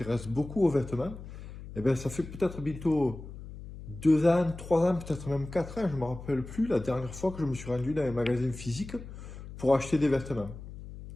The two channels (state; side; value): noise; left; hum, 13 dB below the sound